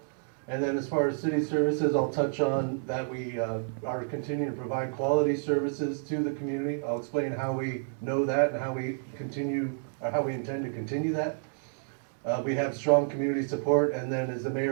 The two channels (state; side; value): silent; left; digital silence